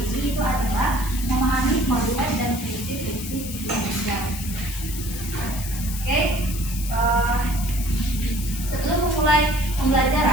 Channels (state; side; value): noise; left; hiss, 9 dB below the sound